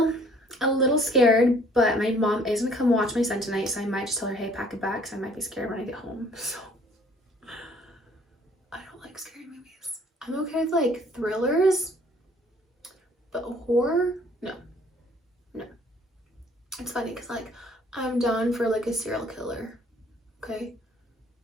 scared, but my mom is gonna come watch my son tonight, so I might just tell her, hey, pack it back, because I might be scared when I get home. So I don't like scary movies. I'm okay with like thrillers, but horror, no. It's funny because like I'm down for like a serial killer, okay,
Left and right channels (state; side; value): normal; both; correlation 0.58